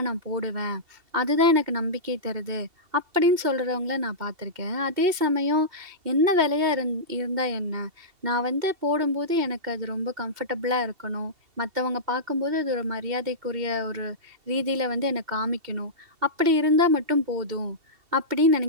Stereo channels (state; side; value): late; left; 2.7 ms